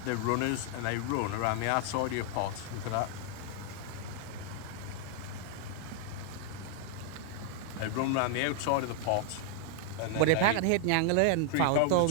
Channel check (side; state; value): both; different; correlation 0.00